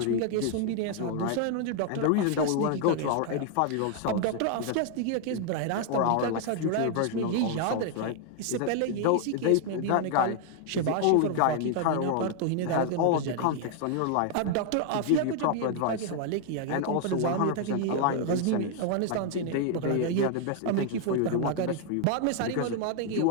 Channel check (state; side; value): different; both; correlation 0.00